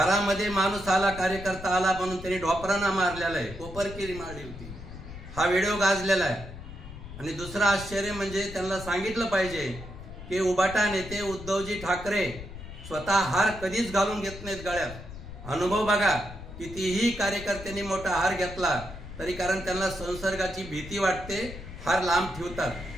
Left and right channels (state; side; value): noise; left; rumble, 13 dB below the sound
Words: माणूस आला, कार्यकर्ता आला म्हणून त्यांनी ढोपरांना मारलेला आहे, कोपरकिरी मारली होती। हा व्हिडिओ गाजलेला आहे। आणि दुसरं आश्चर्य म्हणजे त्यांना सांगितलं पाहिजे की उबाटा नेते उद्धवजी ठाकरे स्वतः हार कधीच घालून घेत नाहीत गळ्यात। अनुभव बघा, कितीही कार्यकर्त्यांनी मोठा हार घेतला तरी कारण त्यांना संसर्गाची भीती वाटते, हार लांब ठेवतात।